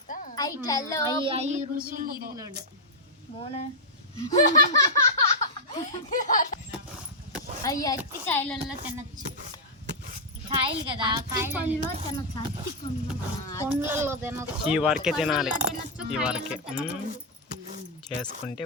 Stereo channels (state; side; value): normal; both; correlation -0.04